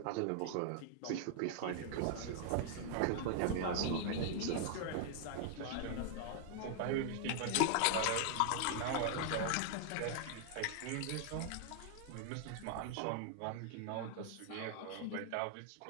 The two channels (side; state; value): both; different; correlation 0.00